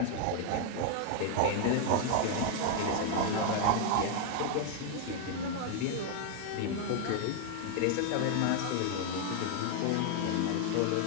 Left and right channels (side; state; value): both; different; correlation 0.00